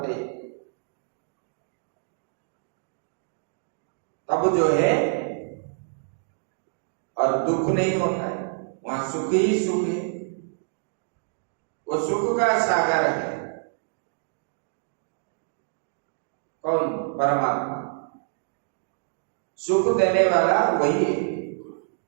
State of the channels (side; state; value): left; silent; digital silence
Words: तब जो है और दुख नहीं होता है, वहां सुख ही सुख है। वो सुख का सागर है कौन? परमात्मा। सुख देने वाला वही है,